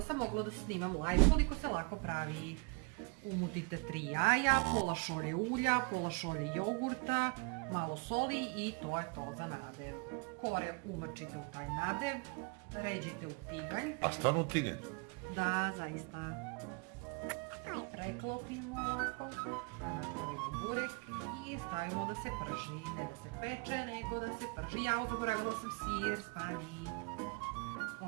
sam mogla da snimam live koliko se lako pravi. Umutite 3 jaja, pola šolje ulja, pola šolje jogurta, malo soli i to je to za nadev. Kore umrčite u taj nadev, ređite u tiganj. A stvarno u tiganj? Da, zaista. Preklopimo ovako, stavimo burek i stavimo da se prži, ne da se peče, nego da se prži. Ja zaboravila sam sir, stani.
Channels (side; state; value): left; quieter; 31.1 dB